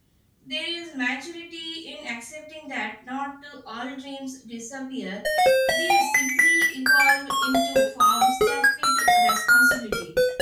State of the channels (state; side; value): identical; both; correlation 1.00